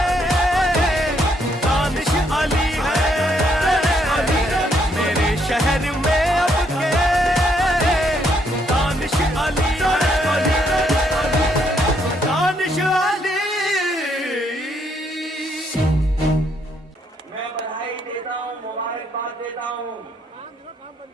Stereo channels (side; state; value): both; normal; correlation 0.72